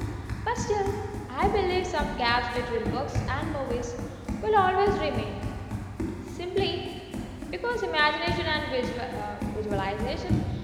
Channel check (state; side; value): identical; both; correlation 1.00